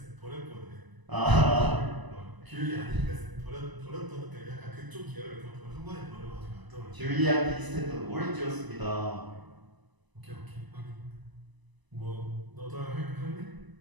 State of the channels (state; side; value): late; left; 1.0 ms